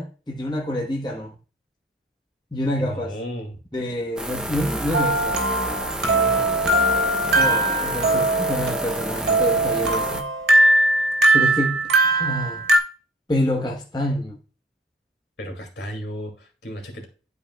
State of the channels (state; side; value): normal; both; correlation 0.46